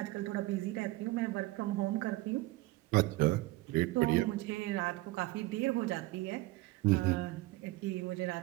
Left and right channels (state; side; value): quieter; left; 19.3 dB